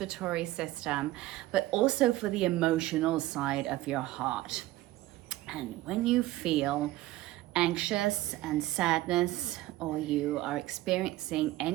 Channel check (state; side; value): quieter; left; 16.9 dB